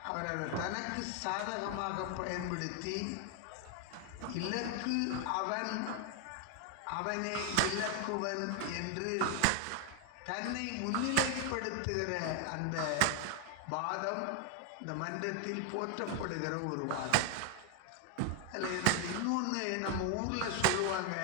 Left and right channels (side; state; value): both; different; correlation 0.00